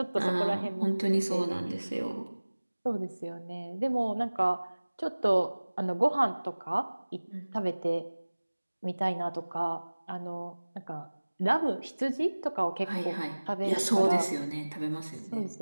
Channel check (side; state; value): both; inverted; correlation -1.00